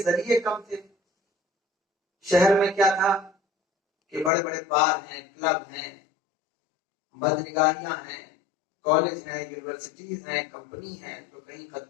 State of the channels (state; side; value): drops out; right; at 4.3 s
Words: ذریعے کم تھے۔ شہر میں کیا تھا کہ بڑے بڑے بار ہیں، کلب ہیں، بدنگاہیاں ہیں، کالج ہیں، یونیورسٹیز ہیں، کمپنی ہیں، تو کہیں